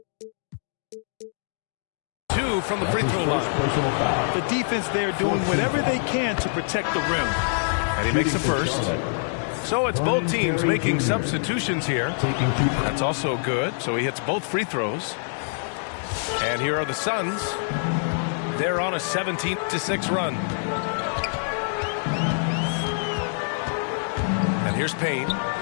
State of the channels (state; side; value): silent; right; digital silence